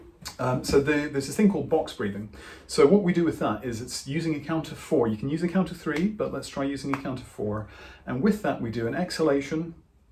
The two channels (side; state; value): both; identical; correlation 1.00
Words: So there's this thing called box breathing. So what we do with that is it's using a count of 4. You can use a count of 3, but let's try using a count of 4. And with that, we do an exhalation